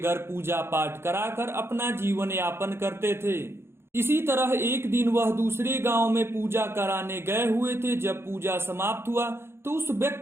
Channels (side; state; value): left; late; 0.12 ms